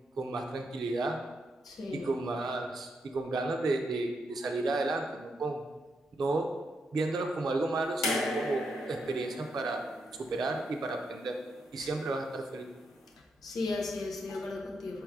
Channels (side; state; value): both; normal; correlation 0.81